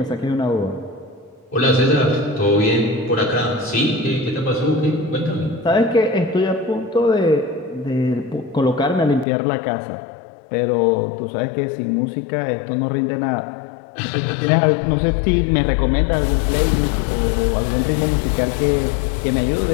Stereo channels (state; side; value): drops out; right; at 9.2 s